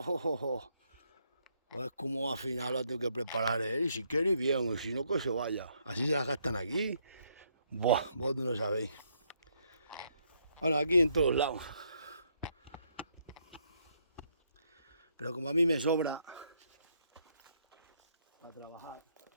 es como al final lo tengo que preparar él. Y si quiere, bien. Y si no, que se vaya. Así se las gastan aquí. Buah, vos no lo sabéis. Bueno, aquí en todos lados. Pero como a mí me sobra a trabajar.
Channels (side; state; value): both; inverted; correlation -0.73